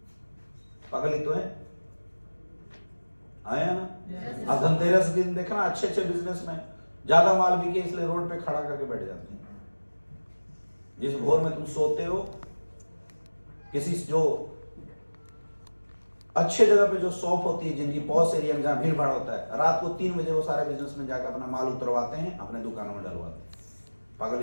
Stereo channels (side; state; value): both; inverted; correlation -1.00